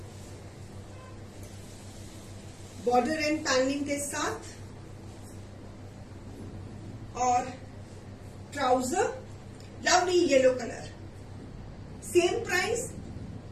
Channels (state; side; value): identical; both; correlation 1.00